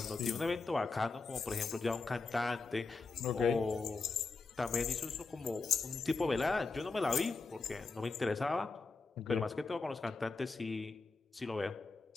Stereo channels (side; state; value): right; quieter; 4.0 dB